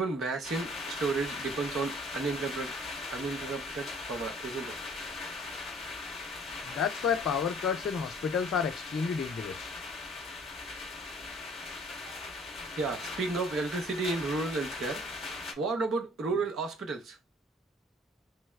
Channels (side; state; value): both; normal; correlation 0.55